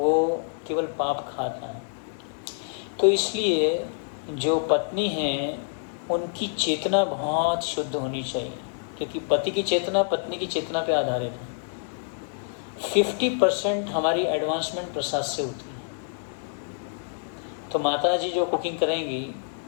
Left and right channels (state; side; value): silent; right; digital silence